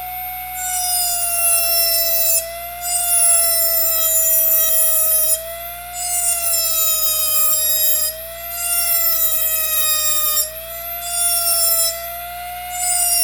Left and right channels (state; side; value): noise; left; hum, 22 dB below the sound